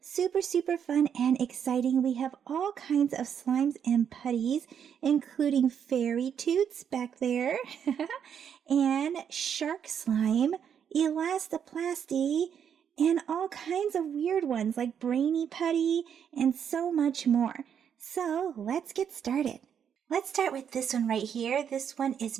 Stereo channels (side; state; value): left; quieter; 8.2 dB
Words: Super fun and exciting. We have all kinds of slimes and putties, including fairy toots back there, and shark slime, elastoplasty, and all kinds of weird ones like brainy putty and so much more. So let's get started. Let's start with this one right here. This one is